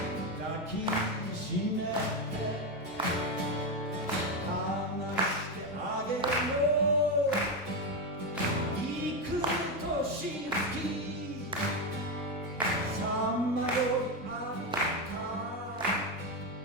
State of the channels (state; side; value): normal; both; correlation 0.10